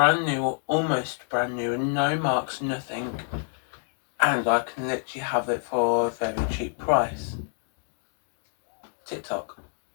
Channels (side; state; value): right; silent; digital silence